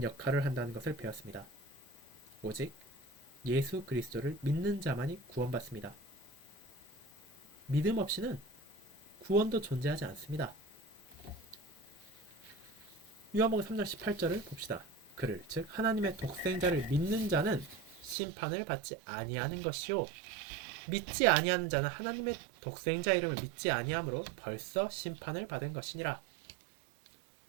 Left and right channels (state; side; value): drops out; left; at 18.2 s